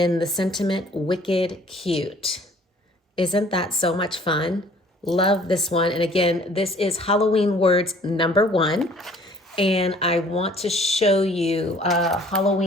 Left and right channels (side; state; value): both; normal; correlation 0.55